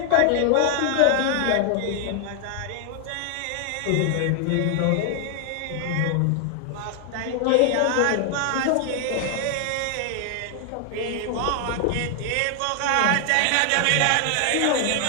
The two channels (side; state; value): both; different; correlation 0.00